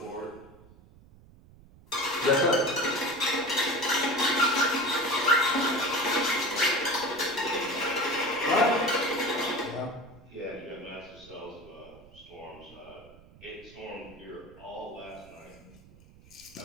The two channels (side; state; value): right; noise; rumble, 24 dB below the sound